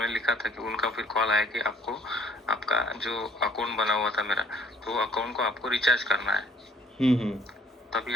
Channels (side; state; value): both; normal; correlation 0.59